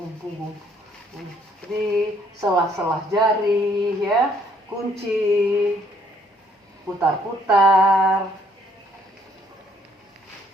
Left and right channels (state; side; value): normal; both; correlation 0.65